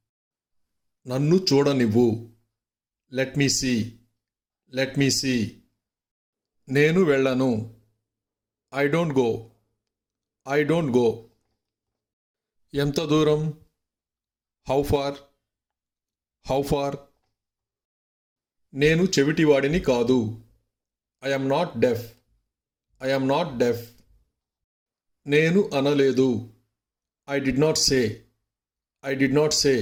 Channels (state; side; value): identical; both; correlation 1.00